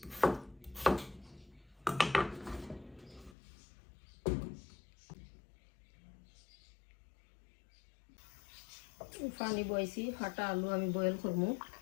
পানি বইছি, ফাটা আলু আমি বয়েল করবো।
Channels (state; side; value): drops out; right; at 3.4 s